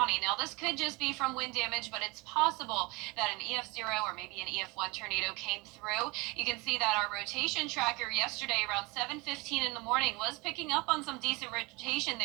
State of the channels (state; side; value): quieter; left; 25.6 dB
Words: Now, this could just be from wind damage, but it's possible that an EF0 or maybe an EF1 tornado came through. You can see that our rotation tracker yesterday around 7:15 in the morning was picking up on some decent rotation